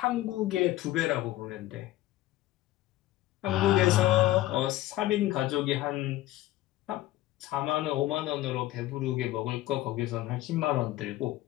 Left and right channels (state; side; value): quieter; right; 15.7 dB